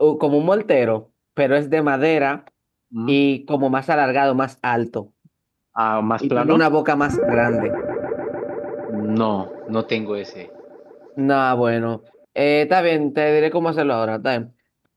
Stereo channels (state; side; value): identical; both; correlation 1.00